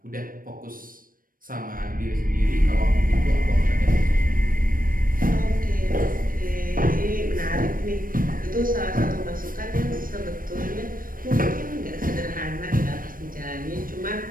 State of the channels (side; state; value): left; late; 0.41 ms